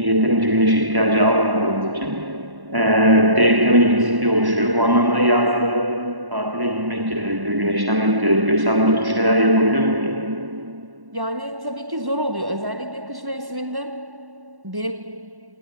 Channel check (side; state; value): left; late; 1.1 ms